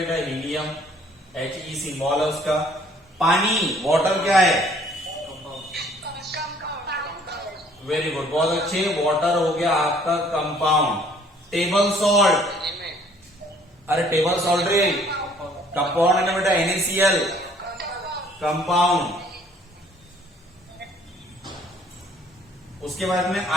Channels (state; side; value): normal; both; correlation 0.59